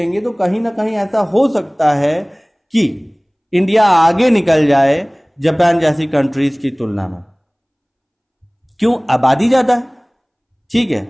तो कहीं ना कहीं ऐसा हो सकता है कि इंडिया आगे निकल जाए जापान जैसी कंट्रीज की तुलना में। क्यों? आबादी ज़्यादा है, ठीक है।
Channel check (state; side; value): identical; both; correlation 1.00